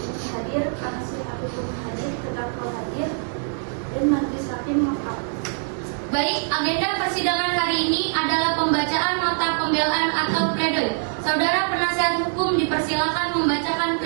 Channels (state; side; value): silent; left; 62 dB below the other